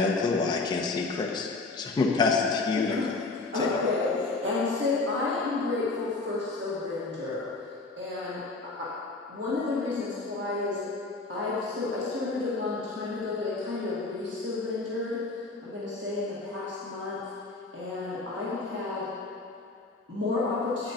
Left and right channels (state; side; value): quieter; right; 3.5 dB